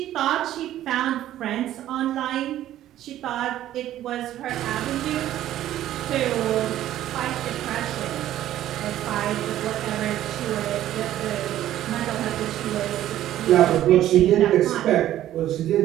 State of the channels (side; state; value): left; quieter; 12.9 dB